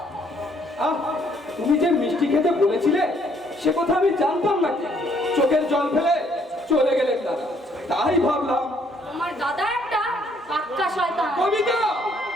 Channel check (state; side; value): normal; both; correlation 0.66